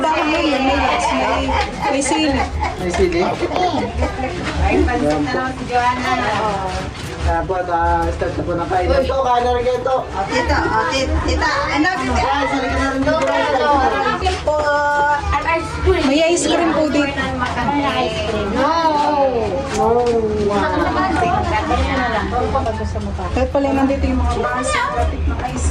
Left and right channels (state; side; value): identical; both; correlation 1.00